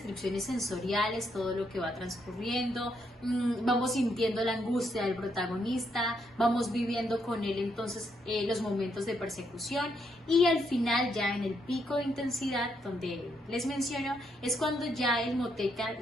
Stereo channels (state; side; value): normal; both; correlation 0.76